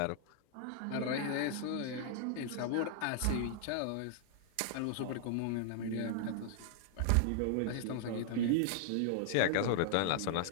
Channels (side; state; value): both; different; correlation -0.01